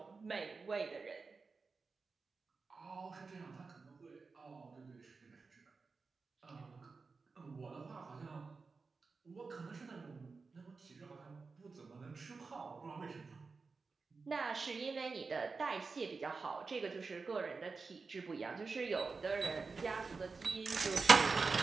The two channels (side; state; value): left; quieter; 4.4 dB